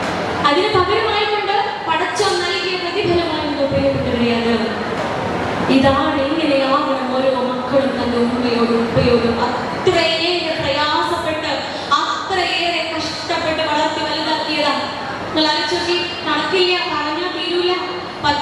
അതിന് പകരമായിക്കൊണ്ട് പടച്ചോൻ നൽകിയ പ്രതിഫലമായിരുന്നു പ്രിയപ്പെട്ടവരെ അത്. ഇതാണ് ഇങ്ങനെയാകണം ഓരോ മക്കളും തന്റെ ഉമ്മയോടും ഉപ്പയോടും അത്രയേറെ പ്രയാസപ്പെട്ട് അത്രയേറെ കഷ്ടപ്പെട്ട് വളർത്തി വലുതാക്കിയതാ. നിങ്ങൾ ആലോചിച്ച്, കണക്കില്ല, പറഞ്ഞാൽ തീരൂല.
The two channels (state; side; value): identical; both; correlation 1.00